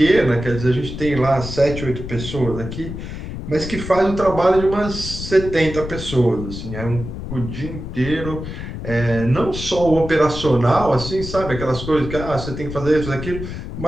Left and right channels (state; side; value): noise; left; rumble, 8 dB below the sound